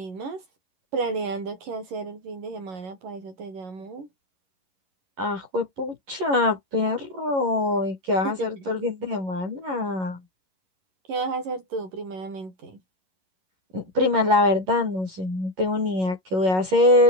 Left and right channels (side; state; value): left; late; 11 ms